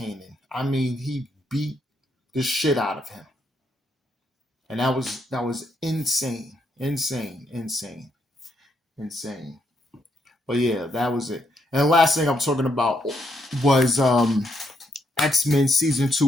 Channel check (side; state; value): both; normal; correlation 0.77